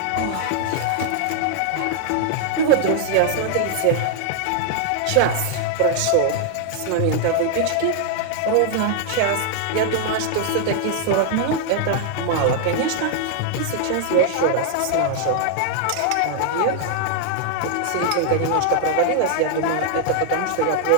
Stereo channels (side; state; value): both; different; correlation 0.00